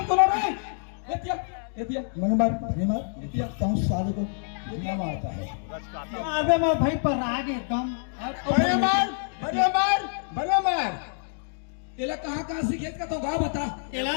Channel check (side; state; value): right; silent; digital silence